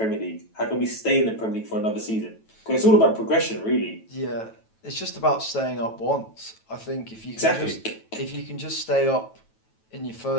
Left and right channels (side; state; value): right; late; 9.1 ms